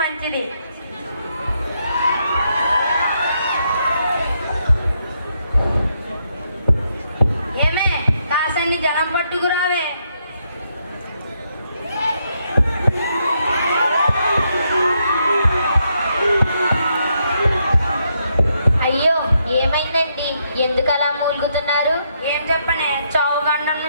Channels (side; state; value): both; inverted; correlation -0.78